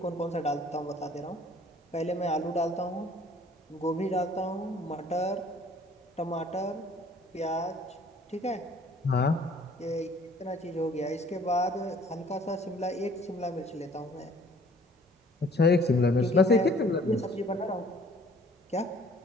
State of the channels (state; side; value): normal; both; correlation 0.55